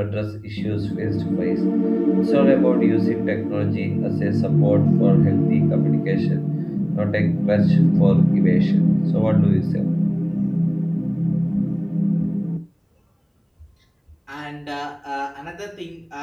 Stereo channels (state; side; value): identical; both; correlation 1.00